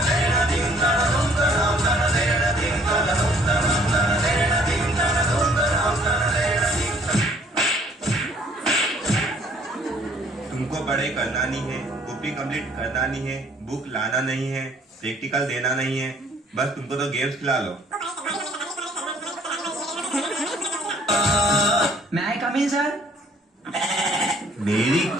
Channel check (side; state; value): both; normal; correlation 0.60